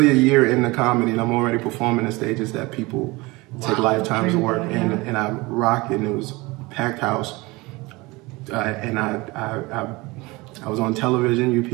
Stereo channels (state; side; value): quieter; left; 23.1 dB